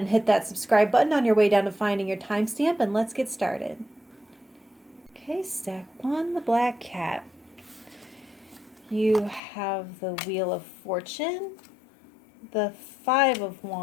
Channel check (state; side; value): drops out; right; at 9.4 s